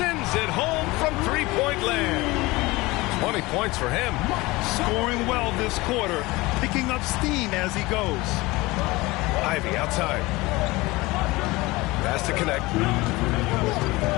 it home from three-point land. 20 points for him. Scoring well this quarter. Picking up steam as he goes. Ivey outside. Pass to connect.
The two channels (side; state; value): right; quieter; 21.4 dB